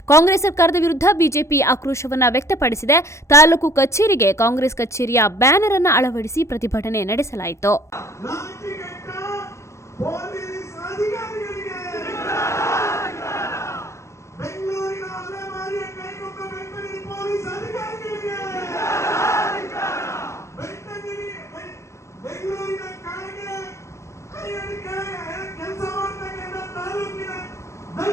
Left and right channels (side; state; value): right; late; 0.14 ms